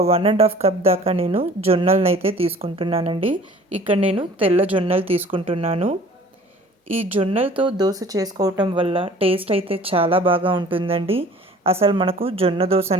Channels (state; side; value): normal; both; correlation 0.49